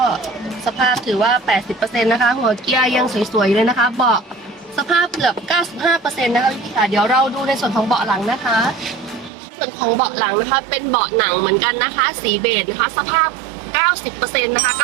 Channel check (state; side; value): drops out; left; at 9.3 s